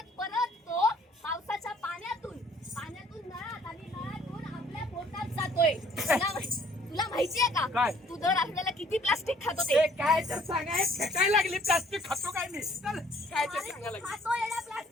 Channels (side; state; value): both; normal; correlation 0.59